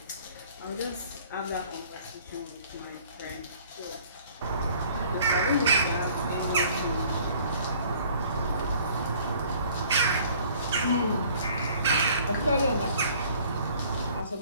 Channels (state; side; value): inverted; both; correlation -0.55